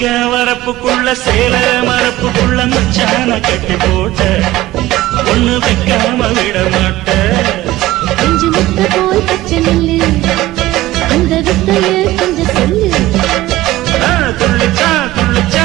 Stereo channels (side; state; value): left; quieter; 16.6 dB